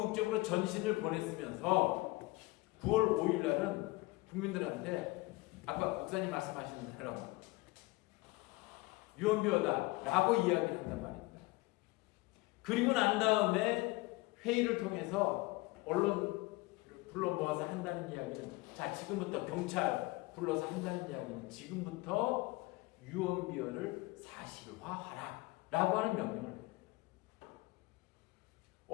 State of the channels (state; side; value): quieter; right; 22.0 dB